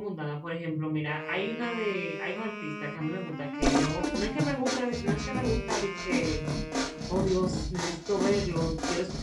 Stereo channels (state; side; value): identical; both; correlation 1.00